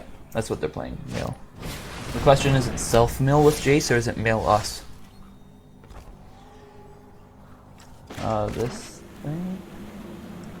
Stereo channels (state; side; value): identical; both; correlation 1.00